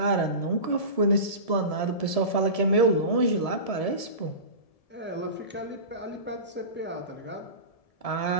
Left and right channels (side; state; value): right; late; 1.7 ms